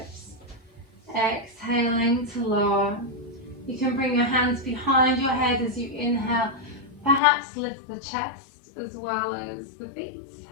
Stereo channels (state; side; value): drops out; right; at 7.2 s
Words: Exhaling to lower. You can bring your hands behind your head as you inhale. Perhaps lift the chest as well as the feet.